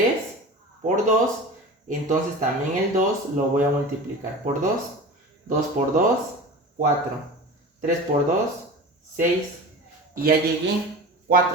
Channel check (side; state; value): both; normal; correlation 0.34